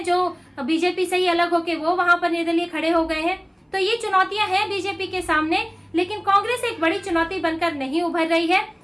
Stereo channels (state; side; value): identical; both; correlation 1.00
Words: जो बीजेपी से ही अलग होके वो वहां पर निर्दलीय खड़े हो गए हैं। तो ये चुनौतियां हैं बीजेपी के सामने, लेकिन कांग्रेस एक बड़ी चुनौती बनकर नहीं उभर रही है।